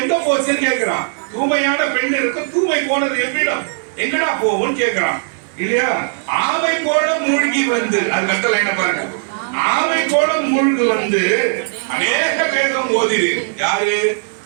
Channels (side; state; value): left; silent; 62 dB below the other